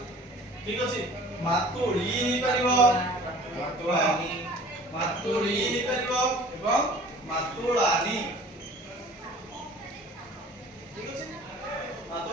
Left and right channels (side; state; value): both; normal; correlation 0.47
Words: ठीक अछि मातुळी हि परिबो मातुळानी मातुळी हि परिबो एवं मातुळानी ठीक अछि